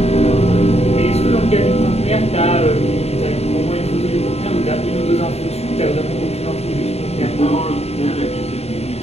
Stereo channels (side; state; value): right; late; 0.30 ms